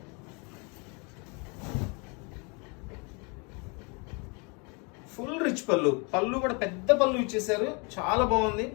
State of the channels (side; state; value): right; quieter; 32.1 dB